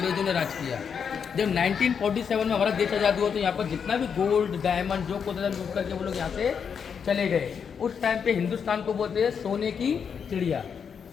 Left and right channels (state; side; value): quieter; right; 6.8 dB